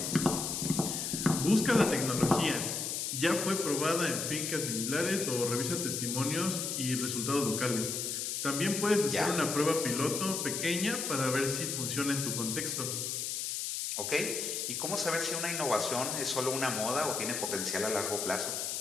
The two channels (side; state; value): left; noise; hiss, 2 dB below the sound